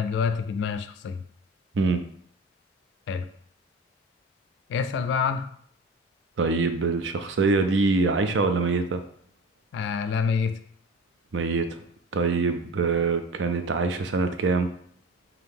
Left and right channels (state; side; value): normal; both; correlation 0.34